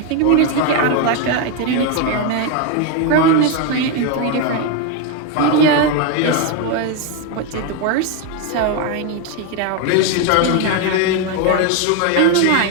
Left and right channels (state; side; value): different; both; correlation 0.01